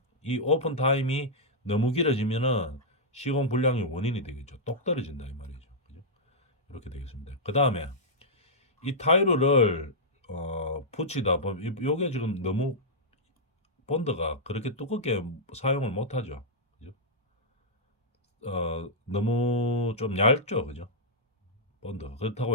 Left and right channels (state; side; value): normal; both; correlation -0.10